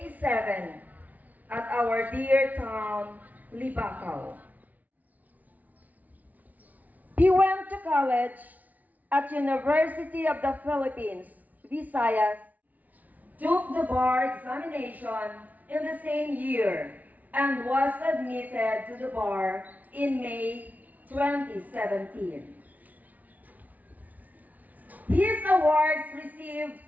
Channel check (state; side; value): late; left; 0.075 ms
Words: at our dear town, Libacao. He went to college at University of the Philippines, Visayas, took the bar examination in the same year, and was admitted to the bar in May 2017. His awards received